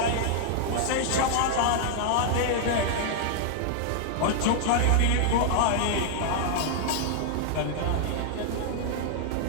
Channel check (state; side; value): different; both; correlation -0.01